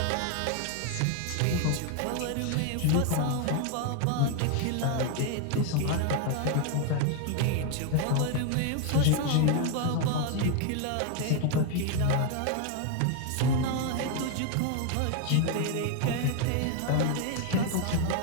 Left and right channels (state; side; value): different; both; correlation 0.01